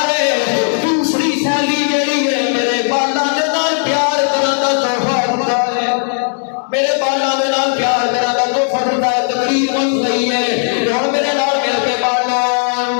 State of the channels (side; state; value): right; silent; 56 dB below the other